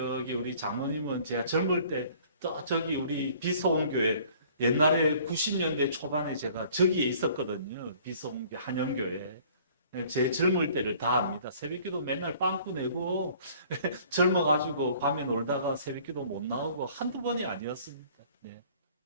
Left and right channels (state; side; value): inverted; both; correlation -0.54